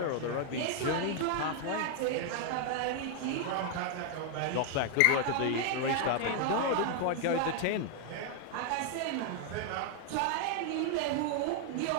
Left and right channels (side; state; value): both; different; correlation 0.00